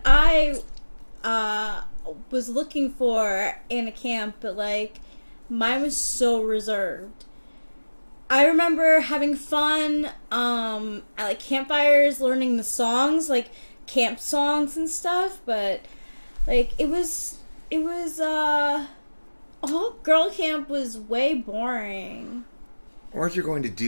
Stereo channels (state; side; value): inverted; both; correlation -1.00